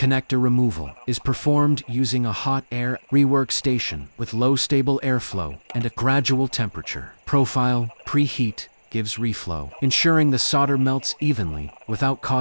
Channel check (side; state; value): both; inverted; correlation -1.00